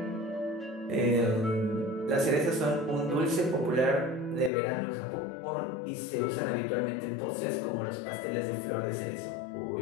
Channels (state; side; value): drops out; right; at 4.5 s